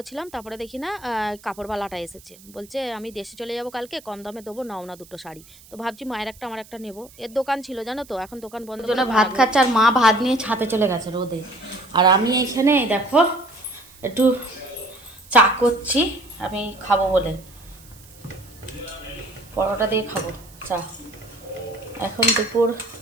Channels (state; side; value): noise; right; hiss, 23 dB below the sound